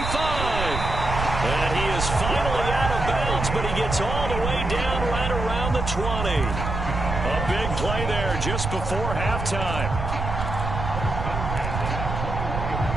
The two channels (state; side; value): noise; right; rumble, 4 dB below the sound